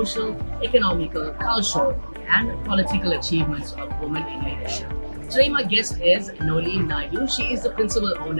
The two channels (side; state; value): both; inverted; correlation -1.00